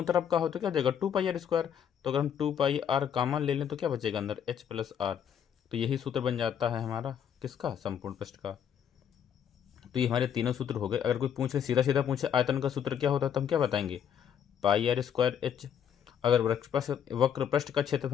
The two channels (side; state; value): right; quieter; 8.6 dB